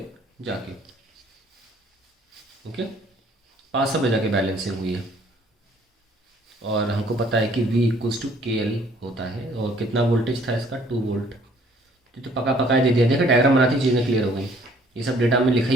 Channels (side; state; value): both; normal; correlation 0.59